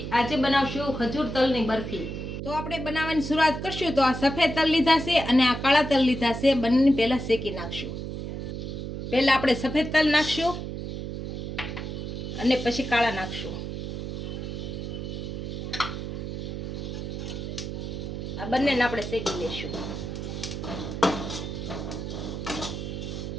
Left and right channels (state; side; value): noise; right; hum, 5 dB below the sound